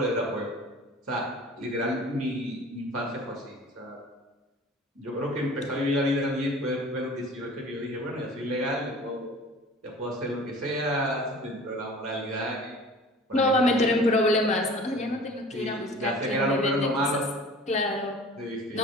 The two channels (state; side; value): normal; both; correlation 0.44